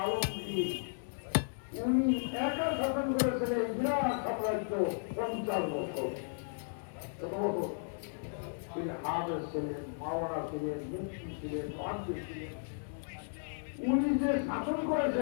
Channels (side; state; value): right; silent; digital silence